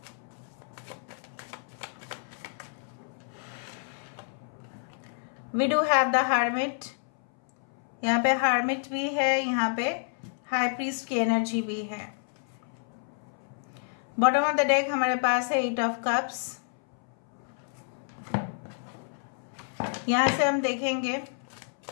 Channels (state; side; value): silent; right; 58 dB below the other